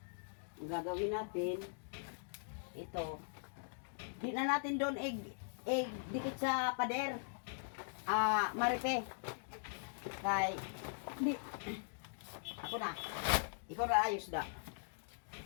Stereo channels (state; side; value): silent; right; digital silence